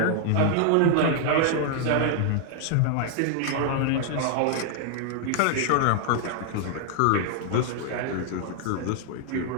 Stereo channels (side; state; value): both; different; correlation 0.00